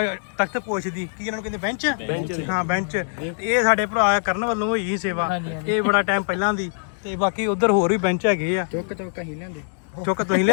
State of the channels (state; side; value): silent; right; digital silence